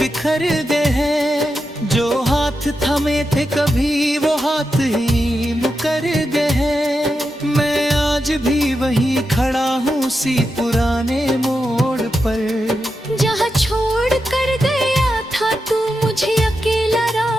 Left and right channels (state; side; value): normal; both; correlation 0.88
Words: गए हैं। जो हाथ थमे थे कभी वो हाथ ही मुकर गए हैं। मैं आज भी वहीं खड़ा हूँ उसी पुराने मोड़ पर। जहाँ छोड़ कर गया था तू मुझे अकेला